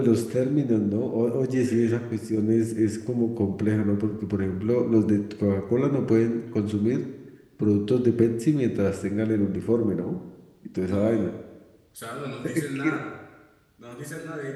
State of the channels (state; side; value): identical; both; correlation 1.00